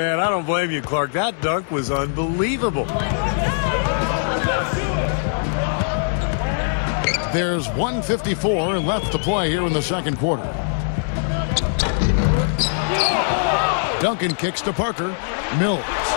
I don't blame you, Clark. That dunk was unbelievable. There's 1:54 left to play here in the second quarter. Duncan kicks to Parker. Mills.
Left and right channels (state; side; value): silent; right; digital silence